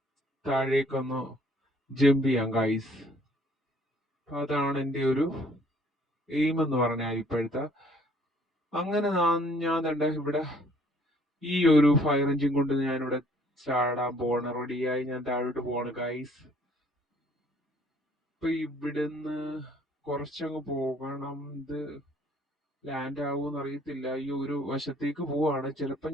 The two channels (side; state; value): both; normal; correlation 0.60